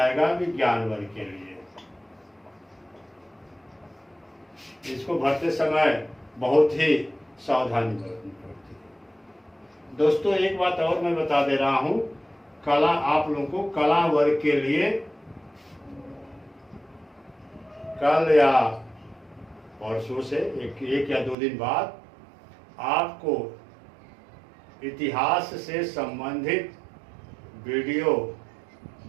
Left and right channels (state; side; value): drops out; left; at 21.4 s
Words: विज्ञान वर्ग के लिए। इसको भरते समय बहुत ही सावधानी बरतनी पड़ती है। दोस्तों एक बात और मैं बता दे रहा हूं, कला आप लोगों को कला वर्ग के लिए कल या परसों से एक या 2 दिन बाद आपको इतिहास से संबंधित वीडियो